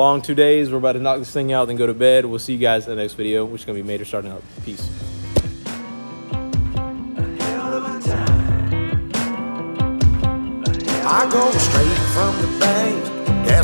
2 days. We're about to knock this thing out, then go to bed. We'll see you guys in the next video, which is going to be Mater starting up. Peace. I go straight from the bank,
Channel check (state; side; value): inverted; both; correlation -1.00